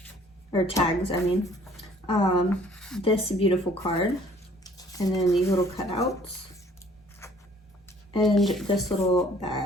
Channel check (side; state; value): both; normal; correlation 0.57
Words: or tags, I mean. This beautiful card, and then these little cutouts, and this little